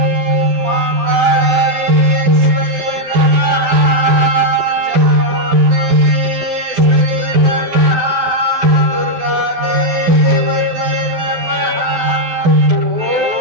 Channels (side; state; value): left; late; 12 ms